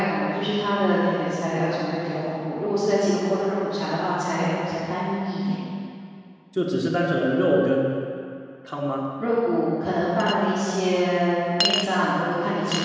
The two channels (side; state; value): both; identical; correlation 1.00